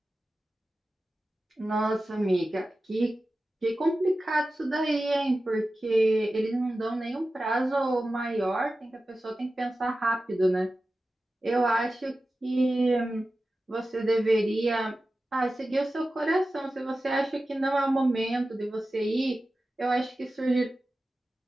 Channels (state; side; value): normal; both; correlation 0.94